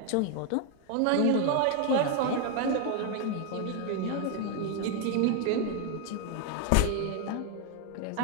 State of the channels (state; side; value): different; both; correlation 0.01